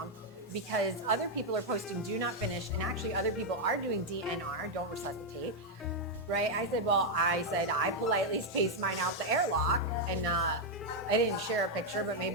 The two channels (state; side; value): normal; both; correlation 0.00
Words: because other people are posting do not finish, and actually other people are doing DNR, don't resuscitate. Right? I said I politely spaced mine out the airlock, and I didn't share a picture, but